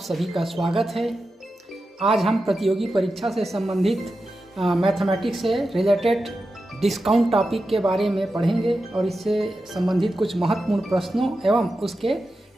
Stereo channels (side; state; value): both; normal; correlation 0.91